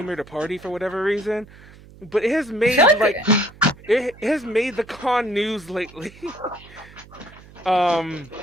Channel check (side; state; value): right; noise; hum, 21 dB below the sound